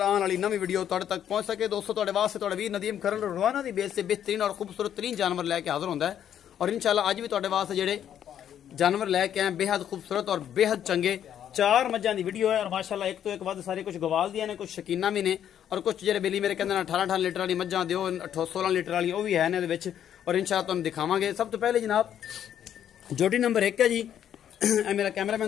आने वाली नवी वीडियो तुहाडे तक पहुंच सके। दोस्तों तुहाडे वास्ते तुहाडा वीर नदीम खरल रोजाना दी बेस से बेहतरीन और खूबसूरत तरीन जानवर लैके हाजिर होंदा है और इंशाल्लाह अज भी तुहाडे वास्ते जेहड़े जानवर लैके आए बेहद खूबसूरत और बेहद चंगे चार मज्जां दी वीडियो है और माशाल्लाह एक तो एक वध सारे कुछ गवाल दियां ने कुछ शकीना भी ने और कुछ जेहड़े बेली मेरे कहंदे 18 लीटर वाली मज्जां दिओ 16 लीटर वाली वो भी है ने दे विच और इंशाल्लाह तुहानूं दिखावांगे। सब तो पहले जनाब जोटी नंबर 1 है जी, मेरा कैमरामैन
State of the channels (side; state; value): right; quieter; 9.9 dB